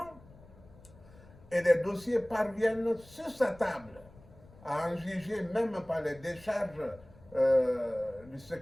Et les dossiers parviennent sur sa table, à en juger même par les décharges du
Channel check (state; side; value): noise; left; rumble, 23 dB below the sound